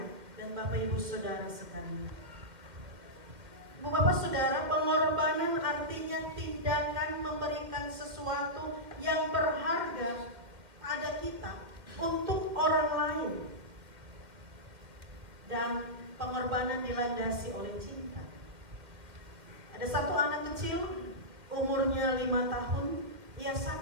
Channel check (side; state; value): left; late; 1.9 ms